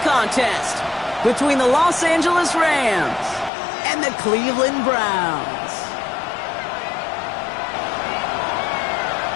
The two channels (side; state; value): right; drops out; at 3.5 s